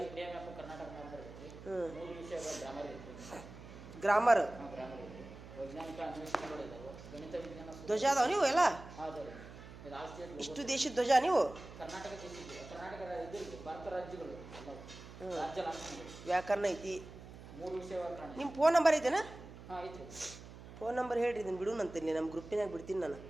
ಕರ್ನಾಟಕ ಮ್ಯಾಪ್ ಬರ್ತೈತಿ. ಹ್ಞೂ, 3 ವಿಷಯಗಳ ಗ್ರಾಮರ್ ಇರ್ತೈತಿ. ಗ್ರಾಮರ್, ಗ್ರಾಮರ್ ಇರ್ತೈತಿ. ವೈಜ್ಞಾನಿಕ ಅನ್ವೇಷಣೆಗಳು ಇದಾವೆ. ಗಣಿತ ವಿಜ್ಞಾನ ಧ್ವಜ ಅದಾವ ನೀವು ಎಲ್ಲ ಹೌದು. ಇದು ಆಸ್ತಿ ಇಷ್ಟು ದೇಶದ ಧ್ವಜ ನೀವು. ಕರ್ನಾಟಕ ದೇಶದ್ದು, ಕರ್ನಾಟಕ ಇದು ಭಾರತ ರಾಜ್ಯಗಳು ಎಲ್ಲವು. ರಾಜ್ಯ ಲಾಂಛನಗಳು, ವ್ಯಾಕರಣ ಐತಿ. 3 ವಿಷಯಗಳ ಕಾರಣ. ನಿಮ್ಮ ಫೋನ್ ನಂಬರ್ ಐತೆನಾ? ಹಾಂ ಐತ್ರಿ. ಫೋನ್ ನಂಬರ್ ಹೇಳ್ರಿ, ಇದನ್ನು ಬಿಡುನಂತೀನಿ, ನಮ್ಮ ಗ್ರೂಪಿನಾಗ ಬಿಡ್ತೀನಿ ನಾನು.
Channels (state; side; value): noise; right; hum, 15 dB below the sound